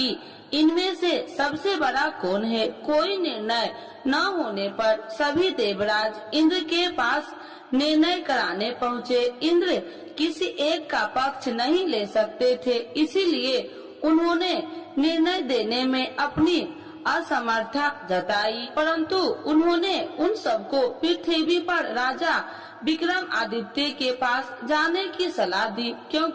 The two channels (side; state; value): both; identical; correlation 1.00